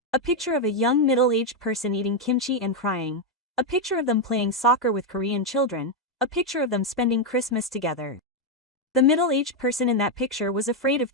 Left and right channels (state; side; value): normal; both; correlation 0.02